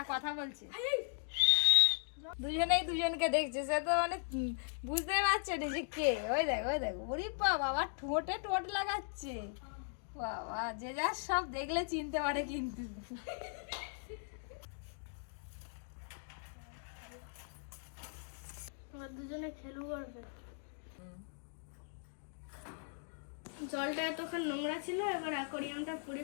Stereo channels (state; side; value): silent; right; digital silence